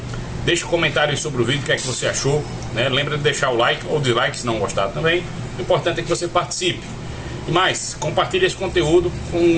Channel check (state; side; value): identical; both; correlation 1.00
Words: deixa um comentário sobre o vídeo, o que é que você achou, né? Lembra de deixar o like ou dislike se não gostar também. O importante é que você participe. E mais, compartilhe esse conteúdo